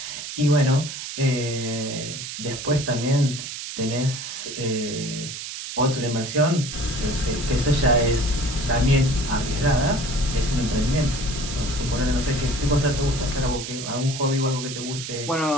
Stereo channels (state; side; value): noise; right; hiss, 8 dB below the sound